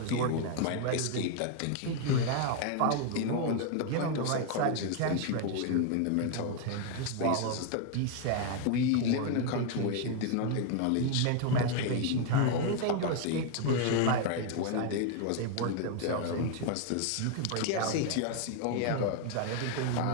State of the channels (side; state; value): both; different; correlation 0.00